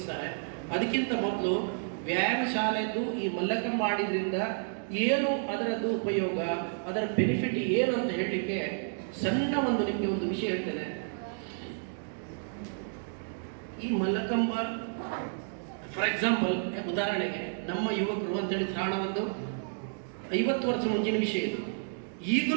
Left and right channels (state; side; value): silent; left; digital silence